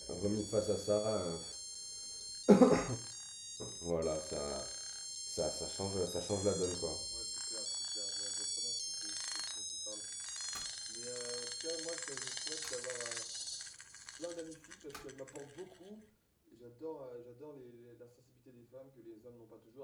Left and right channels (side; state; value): both; identical; correlation 1.00